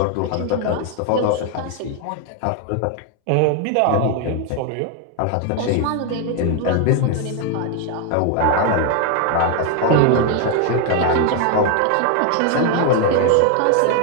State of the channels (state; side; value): different; both; correlation 0.01